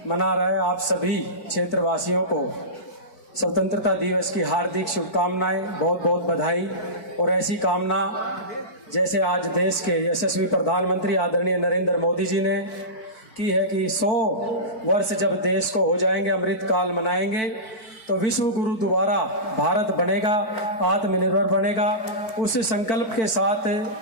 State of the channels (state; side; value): late; right; 4.5 ms